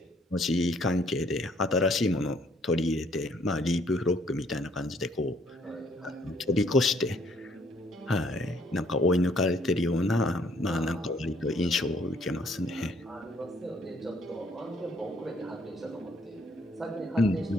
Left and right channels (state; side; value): normal; both; correlation 0.65